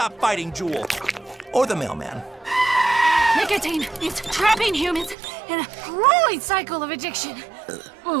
fighting Juul. Or the mailman. Nicotine is trapping humans in a grueling cycle of addiction.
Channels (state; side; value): drops out; left; at 5.2 s